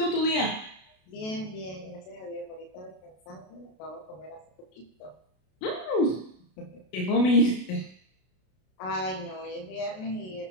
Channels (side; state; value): right; late; 32 ms